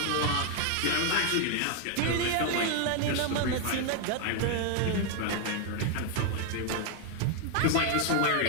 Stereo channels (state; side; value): different; both; correlation 0.01